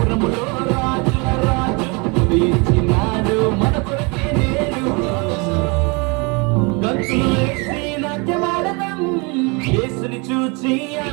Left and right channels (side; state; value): left; quieter; 29.8 dB